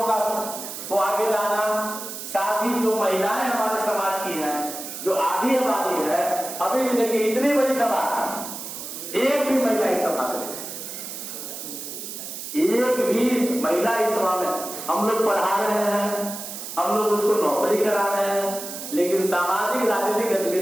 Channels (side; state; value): right; noise; hiss, 9 dB below the sound